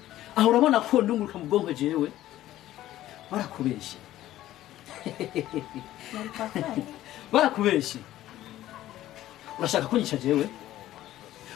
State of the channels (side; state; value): right; quieter; 14.1 dB